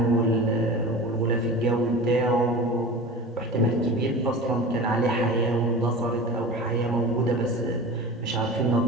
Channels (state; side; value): normal; both; correlation 0.33